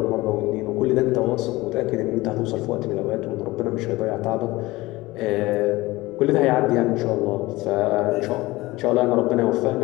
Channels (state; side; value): quieter; right; 20.0 dB